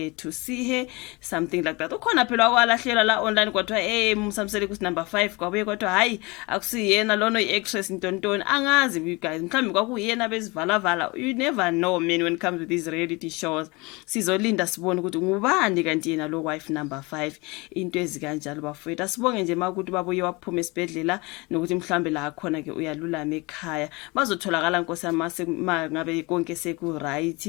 to see her, something like that. Ukhona phela wakwalahlela la online kwathiwa uMseleku number 5 kwabuye kwathiwa hayi akusiyena lona iactress intontoni, angazi you guys, mhlawumbe kwakuyena bezivala. You never know man when it comes to these reality shows. Sizolinda sibone ukuthi ngubani kanti yena lo wife number 5, into ezikanjalo bafethu. Asibonge nje makuthi babuye waphuma esibhedlela nokuthi mhlambe la khona ke uyalulama ekhaya, bazotholakala Nkosi yami ngabe konke seku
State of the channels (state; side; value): quieter; right; 25.5 dB